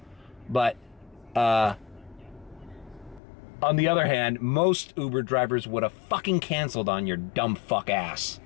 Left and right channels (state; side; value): drops out; right; at 3.2 s